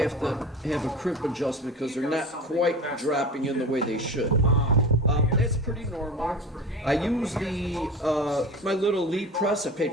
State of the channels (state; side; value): normal; both; correlation 0.33